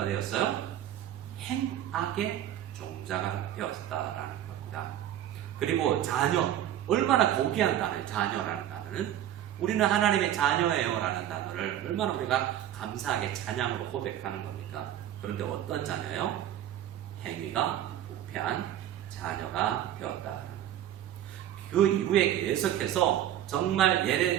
되었어요? 행악의 종자가 되었다라는 겁니다. 그리고 자녀, 얼마나 고귀한 단어예요? 자녀라는 단어는 우리는 하나님의 자녀예요 라는 단어를 얼마나 우리가 감사하게 찬양으로 고백하는 겁니까? 그런데 어떤 자녀예요? 행위가 부패한 자녀가 되었다. 그 이후에 계속해서 정말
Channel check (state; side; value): quieter; left; 11.6 dB